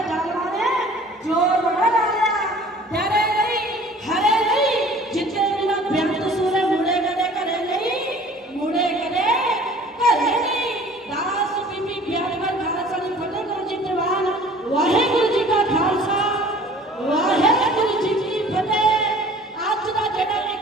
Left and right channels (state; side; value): normal; both; correlation 0.49